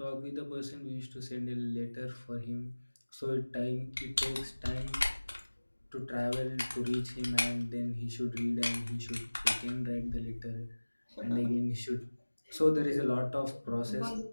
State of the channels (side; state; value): both; inverted; correlation -1.00